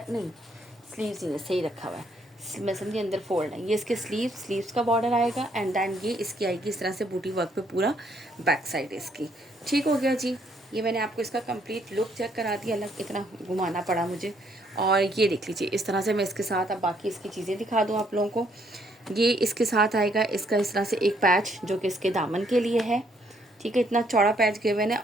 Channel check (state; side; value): normal; both; correlation 0.69